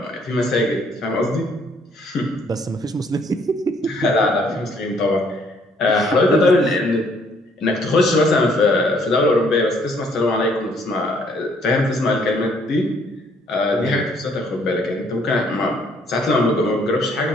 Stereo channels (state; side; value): normal; both; correlation 0.65